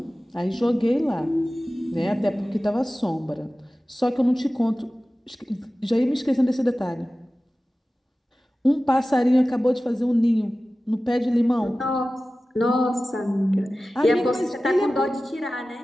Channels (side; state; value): both; normal; correlation 0.96